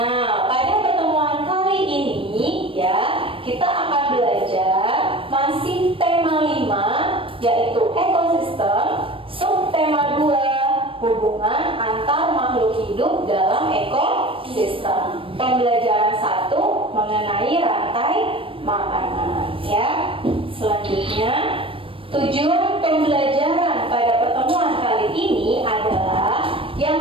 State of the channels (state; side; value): late; left; 0.26 ms